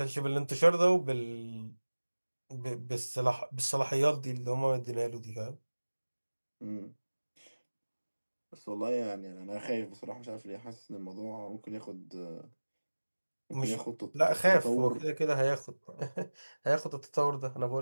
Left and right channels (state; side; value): inverted; both; correlation -1.00